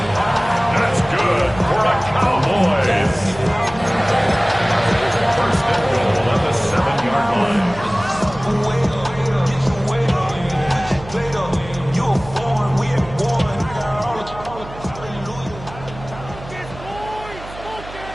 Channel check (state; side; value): noise; right; hum, 15 dB below the sound